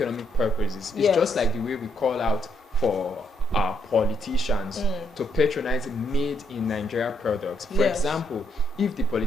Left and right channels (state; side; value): normal; both; correlation 0.74